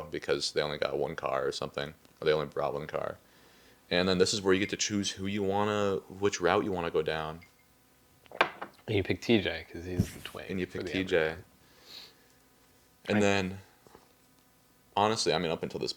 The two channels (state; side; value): identical; both; correlation 1.00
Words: because they only got one car or something, or they only brought one car. And then this is where you get to choose which route you wanna go down. And you pick TJ because he's the twin. And you for pick the TJ. Emma. And then, honestly, I mean, up until this